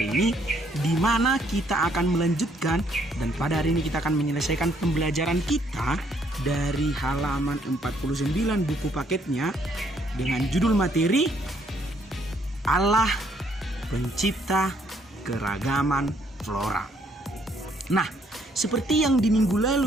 ini, di mana kita akan melanjutkan, dan pada hari ini kita akan menyelesaikan pembelajaran kita dari halaman 49 buku paketnya dengan judul materi Allah Pencipta Keragaman Flora. Nah, seperti yang di minggu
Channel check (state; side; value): normal; both; correlation 0.68